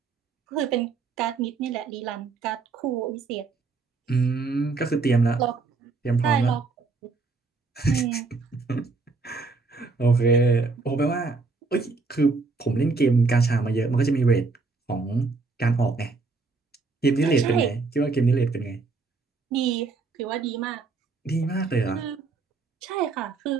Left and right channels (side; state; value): left; quieter; 4.0 dB